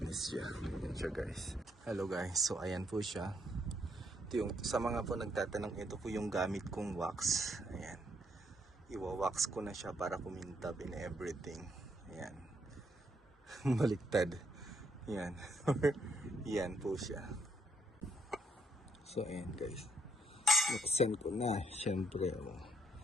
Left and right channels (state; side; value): normal; both; correlation 0.72